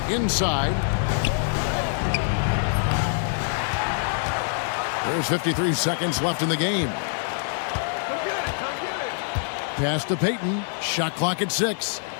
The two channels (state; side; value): silent; right; digital silence